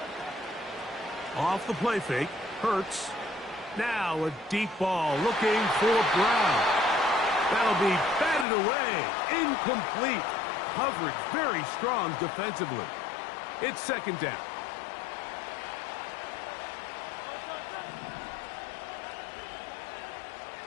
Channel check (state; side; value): drops out; right; at 8.5 s